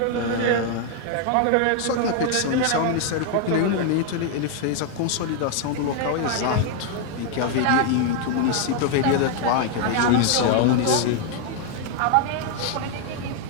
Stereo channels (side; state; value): both; different; correlation 0.00